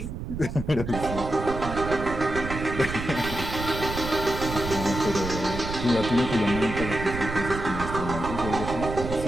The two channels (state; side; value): noise; right; rumble, 7 dB below the sound